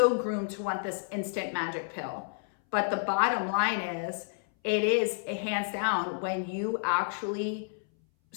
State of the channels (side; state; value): right; silent; 58 dB below the other